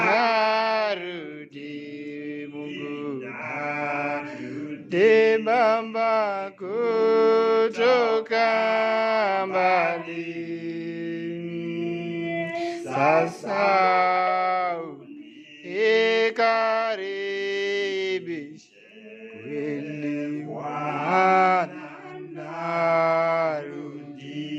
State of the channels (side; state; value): both; identical; correlation 1.00